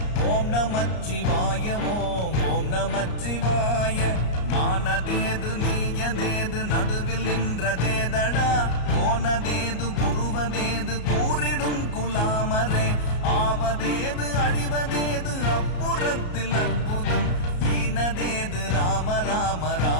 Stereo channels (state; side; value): late; right; 34 ms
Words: ஓம் நமச்சிவாய ஓம் ஓம் நமச்சிவாய. மானதேது நீயதேது நடுவில் நின்றதேதடா போனதேது புருவதேது கூறிடும் குலாமரே ஆவதேது அழிவதேது அப்புறத்தில் அற்புதம் ஈனதேது ராம ராம